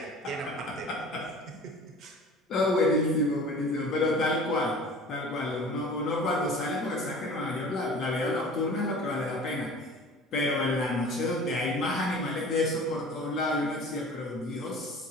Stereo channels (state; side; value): normal; both; correlation 0.42